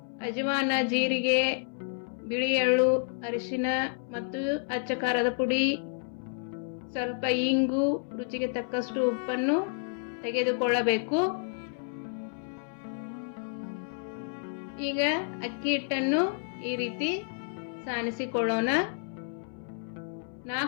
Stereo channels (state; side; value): silent; right; 58 dB below the other